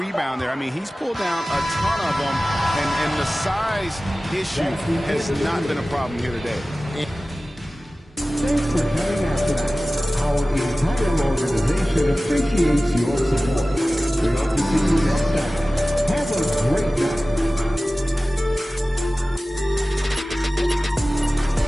there. I mean, he's pulled down a ton of them, and the size issue has not been a problem here today. Thanks for coming out tonight. Our entire organization appreciates your support. We hope to see you next time. Have a great night.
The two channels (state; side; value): normal; both; correlation 0.97